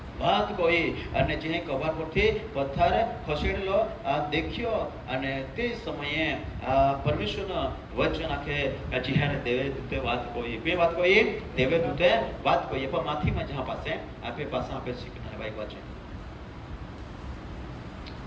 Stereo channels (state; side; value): identical; both; correlation 1.00